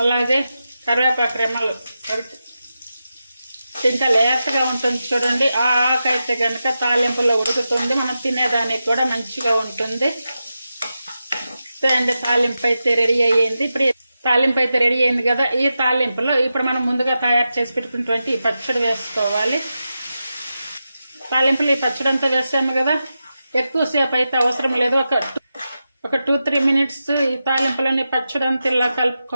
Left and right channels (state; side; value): inverted; both; correlation -0.90